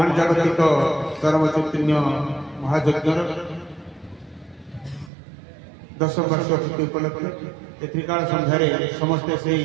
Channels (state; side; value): drops out; left; at 5.1 s